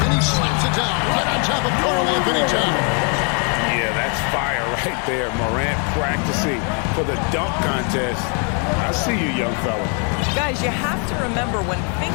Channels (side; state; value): right; quieter; 38.8 dB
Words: he slaps it down right on top of Karl Anthony Towns. Yeah, that's fire right there. Morant practicing for the dunk contest. I see you, young fella. Guys, you have to remember when